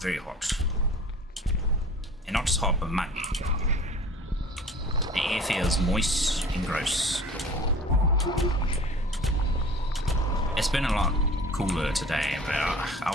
hot. And not just hot, but muggy. The air feels moist and gross. It's been a lot cooler today, but I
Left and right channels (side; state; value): both; normal; correlation 0.44